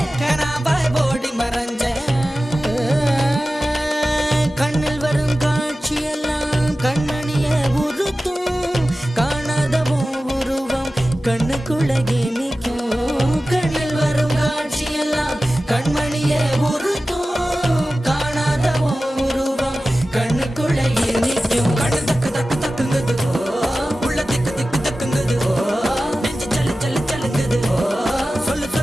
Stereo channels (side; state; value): both; normal; correlation 0.95